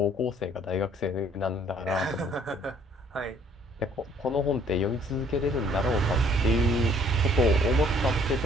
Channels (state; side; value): normal; both; correlation 0.60